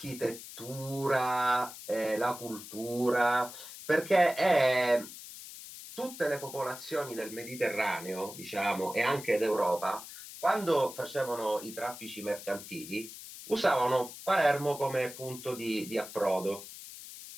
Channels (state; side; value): noise; left; hiss, 13 dB below the sound